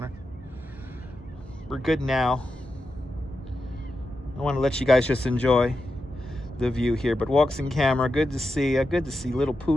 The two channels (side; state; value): both; normal; correlation 0.89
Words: We're good now. I want to let you guys just enjoy the view here. But Walks-in Camera, good to see you. Good to see Little